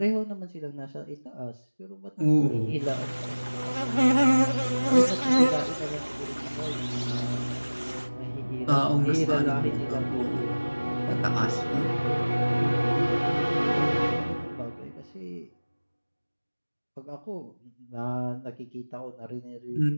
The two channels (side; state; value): both; inverted; correlation -1.00